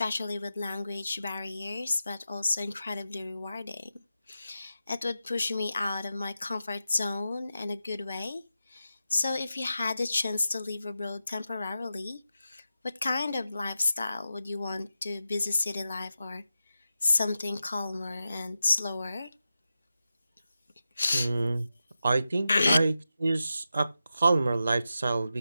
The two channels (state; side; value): inverted; both; correlation -0.91